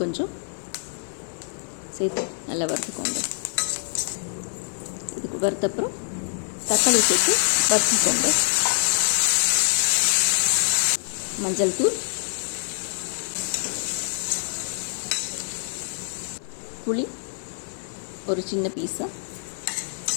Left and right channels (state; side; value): silent; right; 55 dB below the other